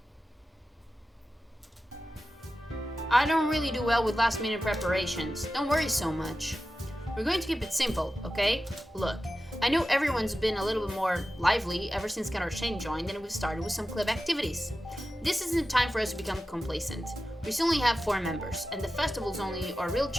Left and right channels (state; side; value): normal; both; correlation 0.93